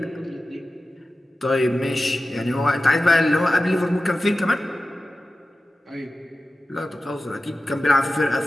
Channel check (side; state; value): both; normal; correlation 0.94